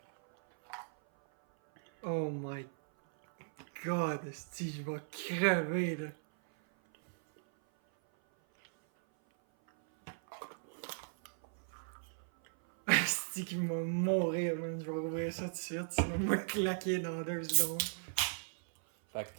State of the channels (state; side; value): silent; left; 53 dB below the other